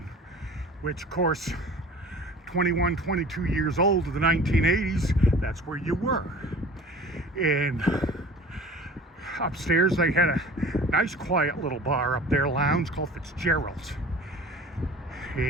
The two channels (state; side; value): normal; both; correlation 0.43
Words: which of course, 21, 22 years old in the 1980s, that's where you were. And upstairs they had a nice quiet little bar up there, lounge called Fitzgerald's.